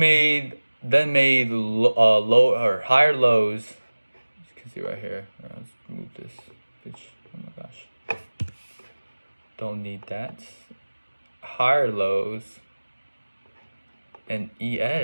low or higher lows. You can see right here. Let's move this bitch. Oh my gosh, don't need that. Higher lows, and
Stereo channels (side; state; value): both; inverted; correlation -1.00